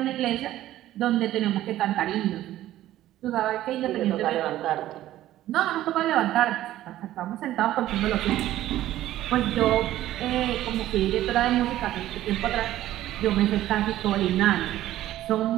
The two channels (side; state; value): left; quieter; 14.0 dB